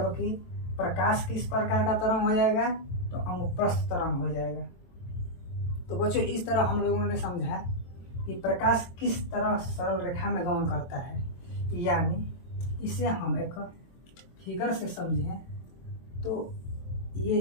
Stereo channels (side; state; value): right; late; 23 ms